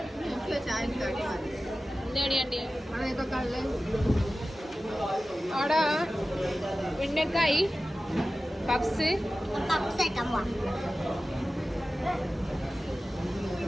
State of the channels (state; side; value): normal; both; correlation 0.95